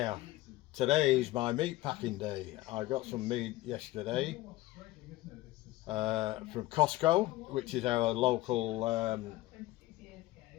today is my meat packing day. I got some meat yesterday from Costco, which is our local,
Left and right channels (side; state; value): right; quieter; 17.5 dB